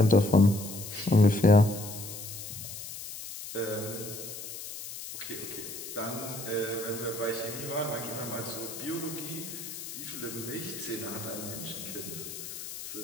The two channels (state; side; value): noise; left; hiss, 9 dB below the sound